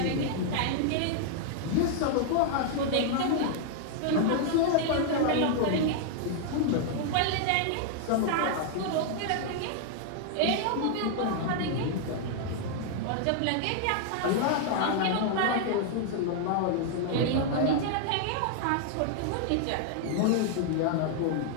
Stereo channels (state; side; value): different; both; correlation 0.00